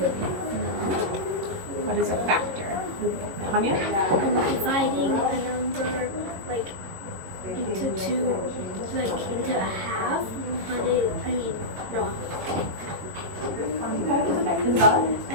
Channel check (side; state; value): left; late; 22 ms